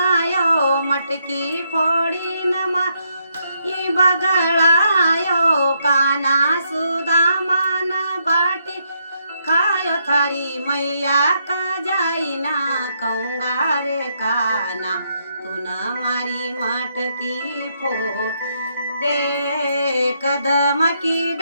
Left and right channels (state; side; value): inverted; both; correlation -0.77